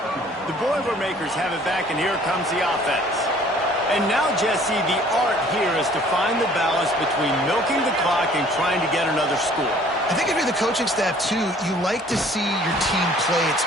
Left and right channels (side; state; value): both; normal; correlation 0.55